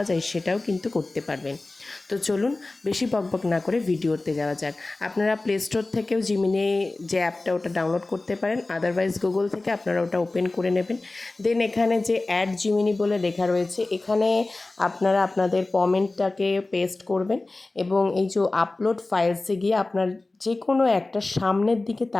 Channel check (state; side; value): quieter; right; 3.1 dB